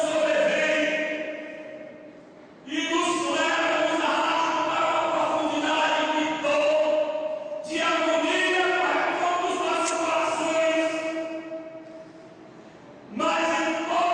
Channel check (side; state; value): both; identical; correlation 1.00